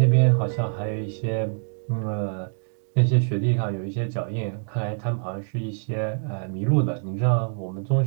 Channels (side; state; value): left; silent; digital silence